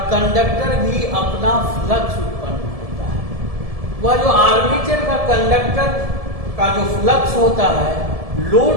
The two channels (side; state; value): left; late; 1.7 ms